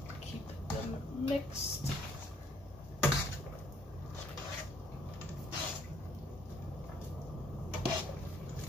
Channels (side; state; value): both; normal; correlation 0.64